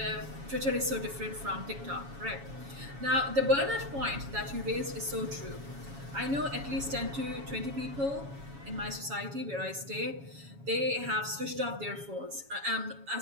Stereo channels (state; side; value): late; left; 7.2 ms